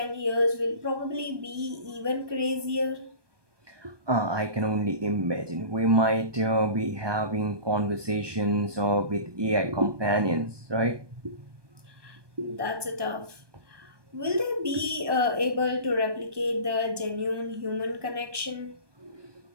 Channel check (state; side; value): late; left; 1.2 ms